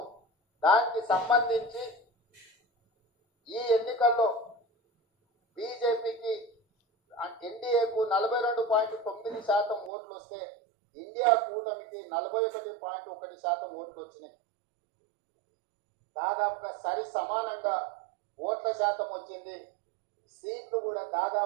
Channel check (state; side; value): drops out; left; at 9.9 s